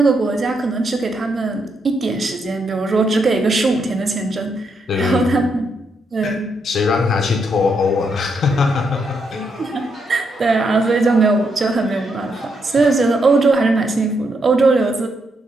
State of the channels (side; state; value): both; normal; correlation 0.79